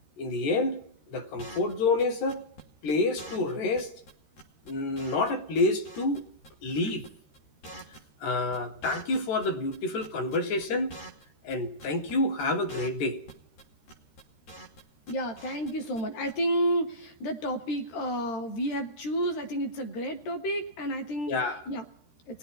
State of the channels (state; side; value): late; right; 13 ms